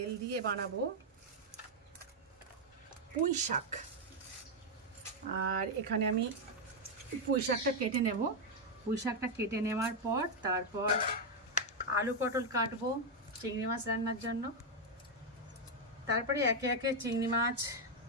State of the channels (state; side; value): normal; both; correlation 0.02